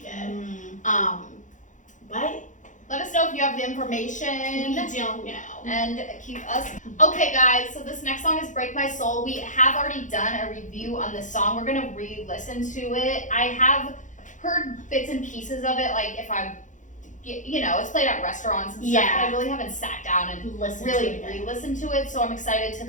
did. But Let us know if you have the we information. don't know. And keep us. Okay, guys, so this next song is Break My Soul. We have already done a review on this song. We're going to re-listen to it. I have heard bits and pieces of it, like if I'm, you know, it's played at restaurants and stuff, Yeah. but I really haven't sat down and Listen really to it. re-listen to it, so I'm excited to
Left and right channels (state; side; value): late; right; 0.36 ms